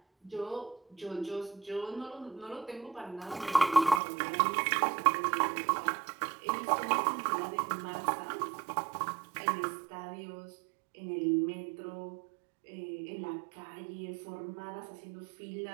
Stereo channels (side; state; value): left; drops out; at 4.0 s